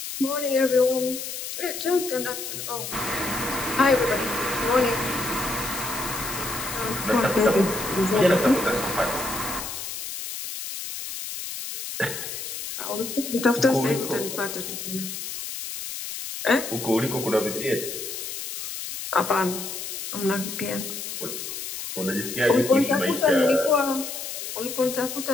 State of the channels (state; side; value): noise; left; hiss, 7 dB below the sound